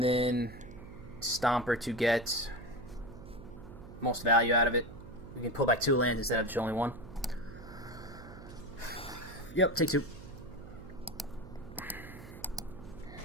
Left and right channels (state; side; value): noise; right; hum, 15 dB below the sound